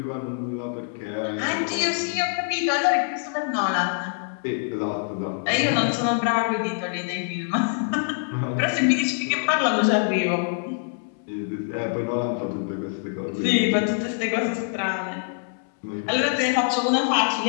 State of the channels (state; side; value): silent; right; 62 dB below the other